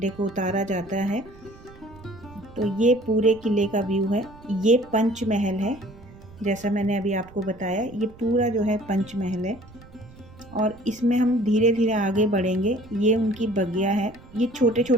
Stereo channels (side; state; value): right; noise; rumble, 21 dB below the sound